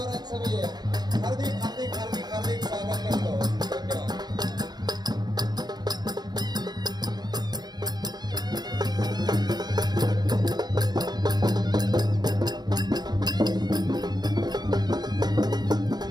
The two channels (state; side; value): late; left; 0.20 ms